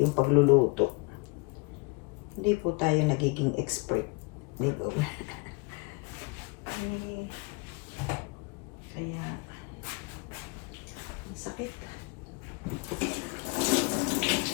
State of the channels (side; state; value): right; quieter; 28.6 dB